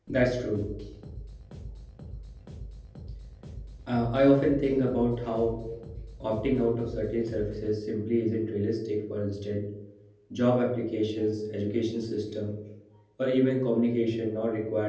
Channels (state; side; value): identical; both; correlation 1.00